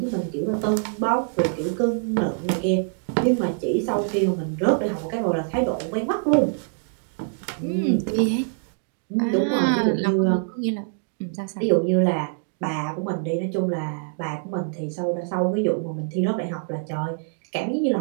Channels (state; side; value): silent; left; digital silence